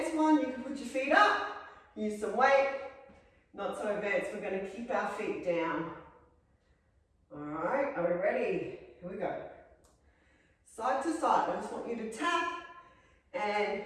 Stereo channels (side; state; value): both; identical; correlation 1.00